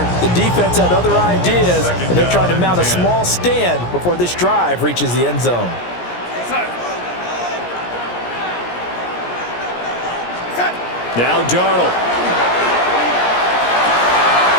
The defense had other ideas, and they're trying to mount a small stand before this drive reaches the end zone. Now Darnold.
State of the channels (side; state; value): right; late; 17 ms